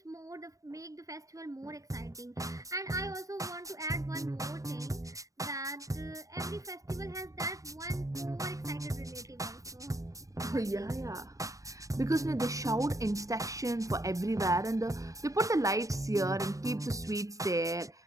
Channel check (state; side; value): late; left; 0.16 ms